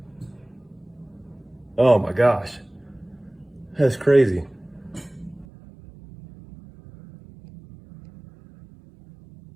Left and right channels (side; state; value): left; drops out; at 5.5 s